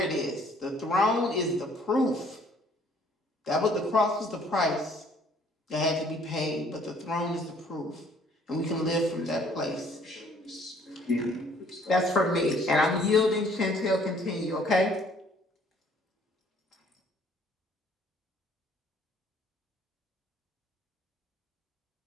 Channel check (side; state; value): both; normal; correlation 0.59